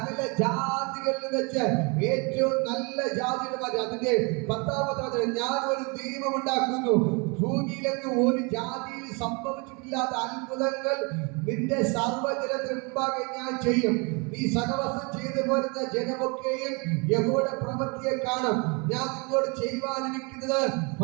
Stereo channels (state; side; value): quieter; left; 31.0 dB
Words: ജാതികളിൽ വെച്ച് ഏറ്റവും നല്ല ജാതിയുടെ മാറ്റി. അതിന്റെ 10ാമത്തെ വചനം, ഞാൻ ഒരു ദൈവം ഉണ്ടാക്കുന്നു, ഭൂമിയിലെങ്ങും ഒരു ജാതിയിൽ സംഭവിച്ചിട്ടില്ലാത്ത അത്ഭുതങ്ങൾ നിന്റെ സർവ്വജനത്തിന് മുമ്പാകെ ഞാൻ ചെയ്യും. നീ സഹവാസം ചെയ്തു പോരുന്ന ജനമൊക്കെയും യഹോവയുടെ പ്രവൃത്തിയെ കാണും. ഞാൻ നിന്നോട് ചെയ്യുവാനിരിക്കുന്നത്